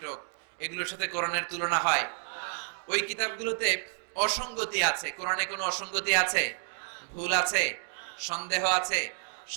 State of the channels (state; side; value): silent; left; 58 dB below the other